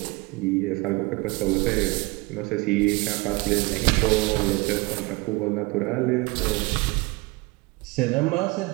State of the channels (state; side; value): quieter; left; 24.3 dB